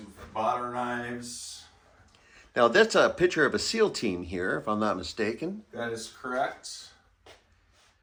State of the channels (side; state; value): both; identical; correlation 1.00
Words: bought our knives. Now, that's a picture of a SEAL team here, if I'm not mistaken. That is correct.